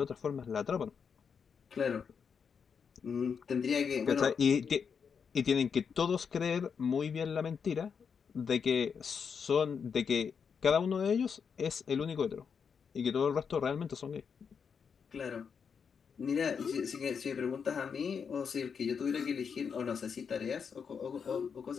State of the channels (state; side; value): quieter; right; 6.4 dB